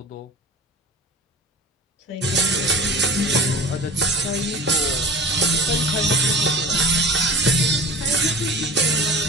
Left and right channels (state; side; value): normal; both; correlation 0.38